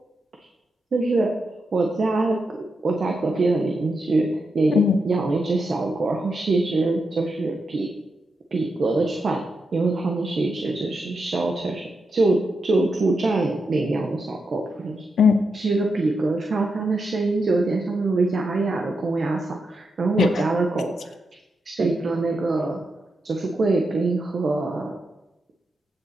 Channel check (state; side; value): normal; both; correlation 0.85